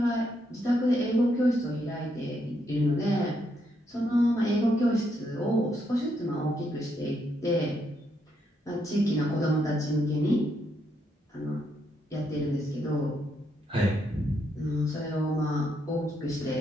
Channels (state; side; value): normal; both; correlation 0.77